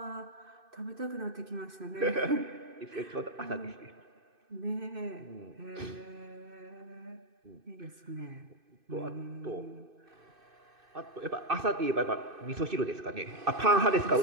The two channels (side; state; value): left; late; 2.6 ms